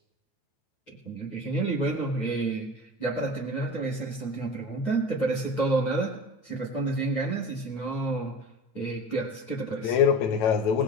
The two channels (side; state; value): right; late; 9.1 ms